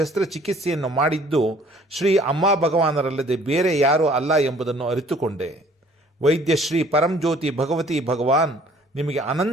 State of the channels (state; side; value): normal; both; correlation 0.56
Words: ಮಾಡಿದ್ದು ಶ್ರೀ ಅಮ್ಮ ಭಗವಾನರಲ್ಲದೆ ಬೇರೆ ಯಾರೂ ಅಲ್ಲ ಎಂಬುದನ್ನು ಅರಿತುಕೊಂಡೆ. ವೈದ್ಯ ಶ್ರೀ ಪರಂಜ್ಯೋತಿ ಭಗವತಿ ಭಗವಾನ್ ನಿಮಗೆ